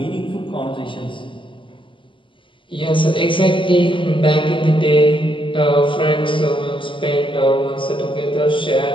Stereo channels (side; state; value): right; late; 0.25 ms